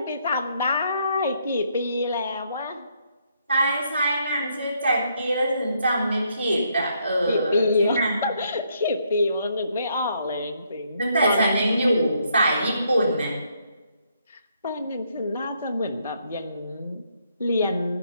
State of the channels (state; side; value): inverted; both; correlation -0.73